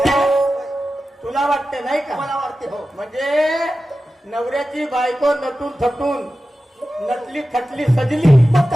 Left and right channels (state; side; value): normal; both; correlation 0.94